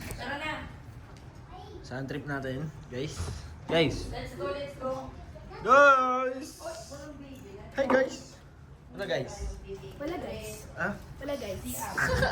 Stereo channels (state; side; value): identical; both; correlation 1.00